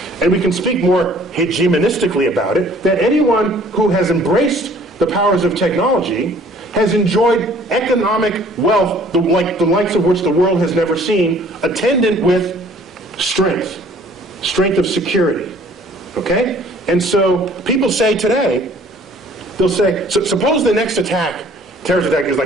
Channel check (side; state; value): both; normal; correlation 0.55